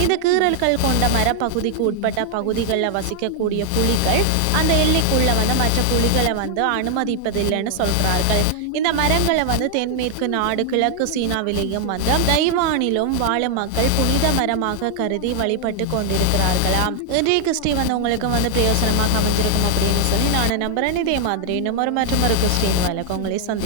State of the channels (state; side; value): different; both; correlation 0.00